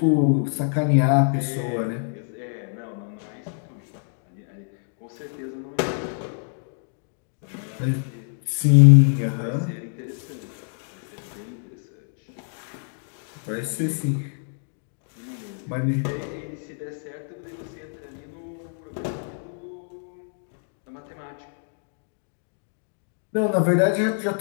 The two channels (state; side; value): silent; right; 61 dB below the other